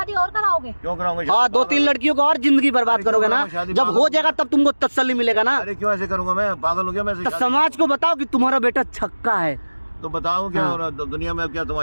और कराओगे? क्यों कराओगे? हाँ 2-3 लड़कियों को और जिंदगी बर्बाद करोगे ना। जब हो जाएगा तब तुमको तसल्ली मिलेगा ना। अरे क्यों ऐसे करूंगा? मैं पागल हो गया? मैं समाज को बताओ कि तुम्हारा बेटा छक्का है। तो बताओ क्या हाँ। हो रहा है दुनिया में, क्या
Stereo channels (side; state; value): both; inverted; correlation -1.00